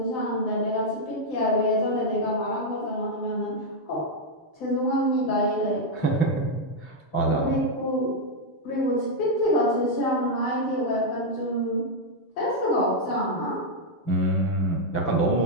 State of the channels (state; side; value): late; right; 6.8 ms